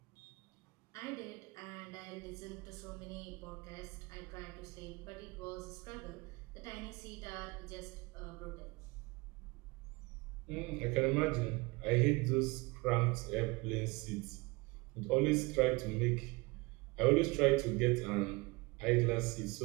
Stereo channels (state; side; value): quieter; left; 25.5 dB